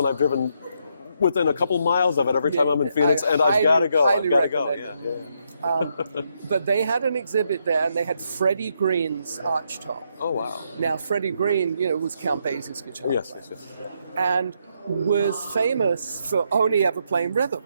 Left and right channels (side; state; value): both; inverted; correlation -0.77